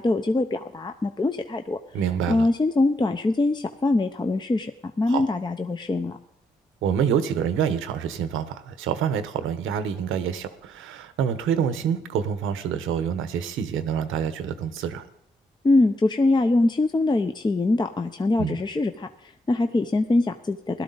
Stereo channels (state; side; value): normal; both; correlation 0.75